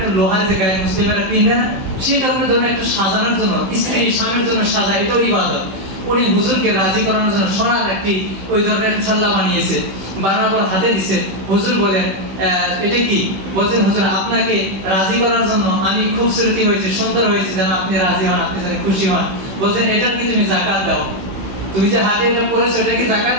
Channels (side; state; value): left; late; 16 ms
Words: লোহার যে গায়ে মুসলিমেরা পিনে না, সেই কারণে ধরনের একটা সাজানোর জন্য, স্ত্রী স্বামীর জন্য সাজা, এটাও ইবাদত। উনি হুজুরকে রাজি করানোর জন্য সোনার একটি ওই ধরনের ছাল্লা বানিয়েছে, বানানোর হাতে দিছে। হুজুর বলেন এটা কি? বলছেন হুজুর আপনাকে রাজি করার জন্য আমি খুব সুরতি হয়েছে, সুন্দর হয়েছে, যেন আপনি রাজি হন, আপনি যেন খুশি হন। বলছেন এটার কি তুমি যাকাত দাও? তুমি যে হাতে এটা পরেছো, এটা কি যাকাত